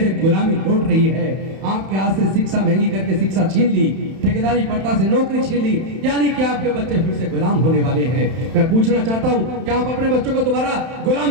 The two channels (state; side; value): late; left; 31 ms